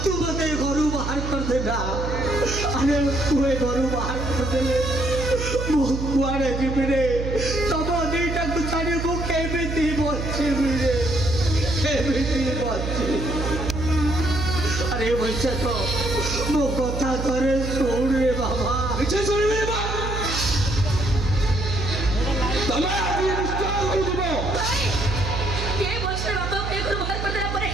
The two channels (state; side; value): noise; right; hum, 4 dB below the sound